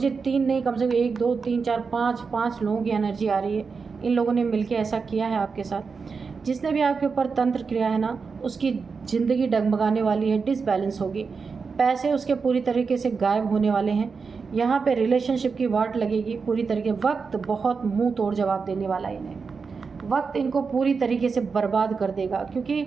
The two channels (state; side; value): quieter; left; 5.1 dB